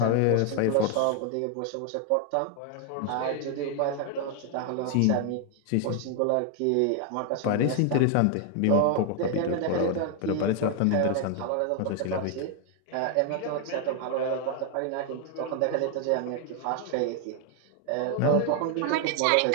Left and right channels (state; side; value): different; both; correlation 0.00